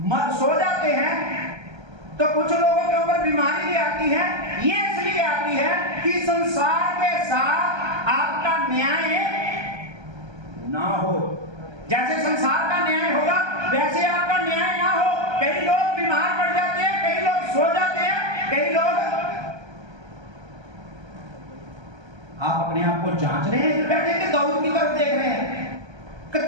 सो जाते हैं, तो कुछ लोगों के ऊपर बीमारी भी आती है। ये इसलिए आती है कि संसार के साथ आपका न्याय ना हो। जैसे संसार का न्याय होगा वैसे आपका न्याय ना हो। कई लोग बीमार पड़ जाते हैं, कई लोग सो जाते हैं, कई लोग, आप अपने आप को जांच रहे हैं बैठे कि दाऊद की तरफ देख रहे हैं, कि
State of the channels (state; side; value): late; left; 1.3 ms